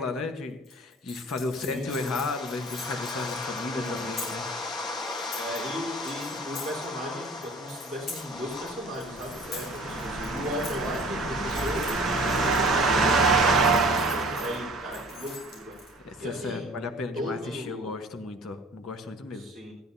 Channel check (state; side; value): normal; both; correlation 0.47